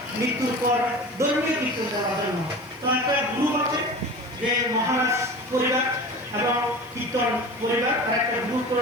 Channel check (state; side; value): noise; left; hiss, 28 dB below the sound